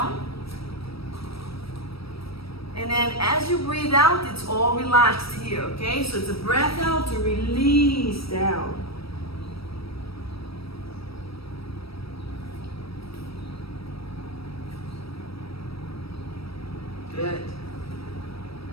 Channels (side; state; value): right; late; 0.76 ms